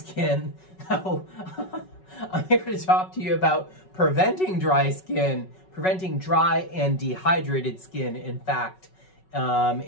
I'm here to talk to you about preventing dry skin, preventing dry and dehydrated skin, in fact,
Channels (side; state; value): right; late; 5.4 ms